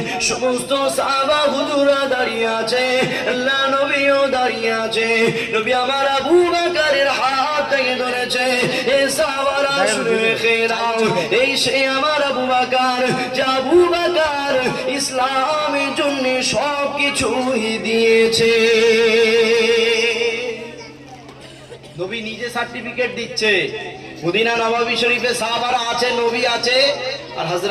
সমস্ত সাহাবা হুজুরা দাঁড়িয়ে আছে, আল্লাহ নবীও দাঁড়িয়ে আছে। নবী আমার আবু বকরের হাত থেকে ধরেছে। এই সাহাবারা শুনে রেখে দাও, এই সে আমার আবু বকর, যে আবু বকর ইসলামের জন্য সব কিছুই দিয়েছে। নবী নিজে সার্টিফিকেট দিচ্ছে। মদিনা নববী শরীফে সাহাবারা আছে, নবী আছে, আর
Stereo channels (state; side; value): identical; both; correlation 1.00